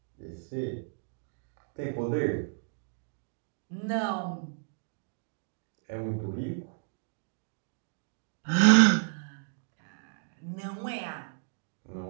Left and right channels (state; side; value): silent; left; digital silence